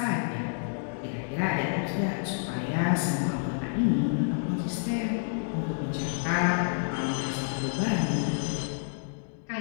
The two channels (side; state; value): right; silent; 59 dB below the other